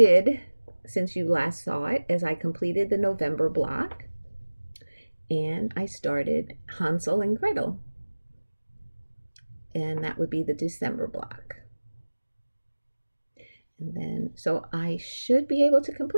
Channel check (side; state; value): both; inverted; correlation -1.00